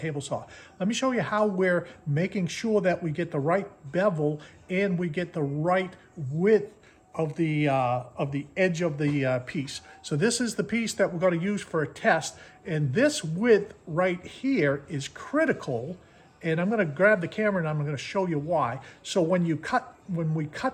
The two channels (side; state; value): both; identical; correlation 1.00